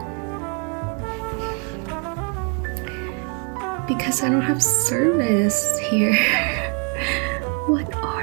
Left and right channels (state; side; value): quieter; left; 37.6 dB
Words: I don't have service here. What